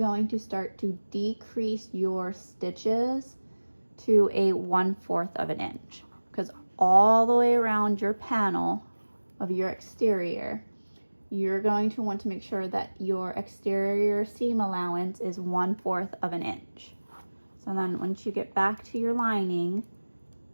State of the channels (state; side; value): inverted; both; correlation -1.00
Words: to start to decrease your stitches to a 1/4 of an inch, because all the way around your panel of your exterior, you're going to want to make sure that your exterior seam allowance is 1/4 of an inch. So then once you get back to your lining,